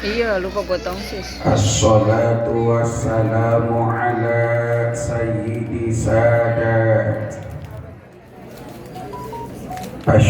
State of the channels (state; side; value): identical; both; correlation 1.00